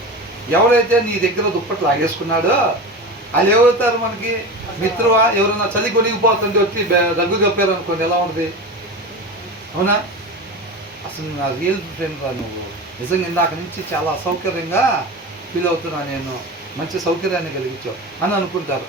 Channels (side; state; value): both; normal; correlation 0.27